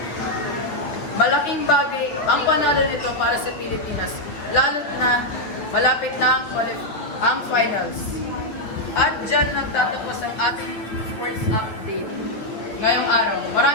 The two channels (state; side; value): late; right; 8.9 ms